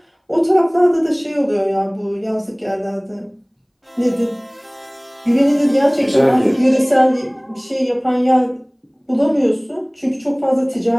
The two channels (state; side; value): identical; both; correlation 1.00